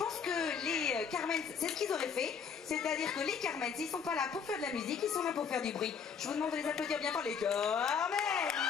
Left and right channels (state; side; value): quieter; right; 6.5 dB